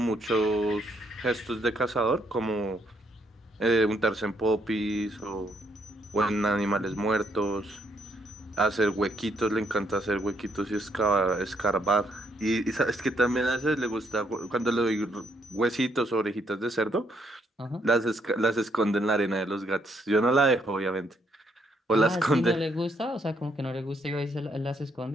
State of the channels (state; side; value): normal; both; correlation 0.72